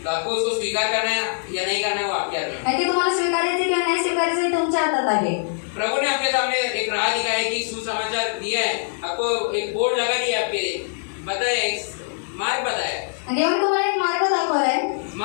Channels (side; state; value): right; silent; digital silence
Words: तो आपको उसको स्वीकार करना है या नहीं करना है वो आपके हाथ में है। आणि ते तुम्हाला स्वीकारायचे किंवा नाही स्वीकारायचे हे तुमच्या हातात आहे. प्रभु ने आपके सामने एक राह दिखाया कि सुसमाचार दिया है, आपको एक बोर्ड लगा दिया, आपके बताया, मार्ग बताया, आणि देवाने तुम्हाला एक मार्ग दाखवलाय.